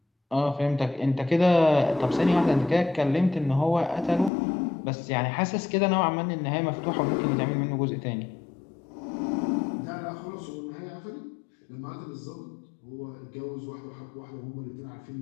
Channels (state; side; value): drops out; right; at 4.3 s